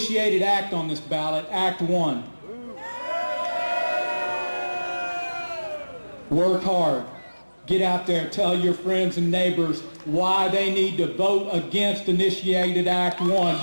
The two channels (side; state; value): both; inverted; correlation -1.00